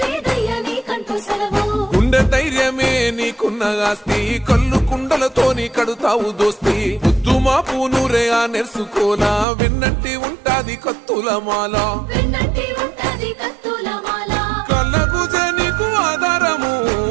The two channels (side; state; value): left; drops out; at 9.5 s